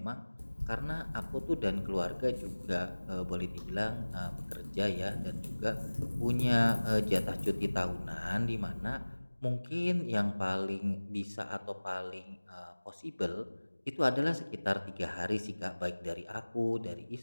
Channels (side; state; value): both; inverted; correlation -1.00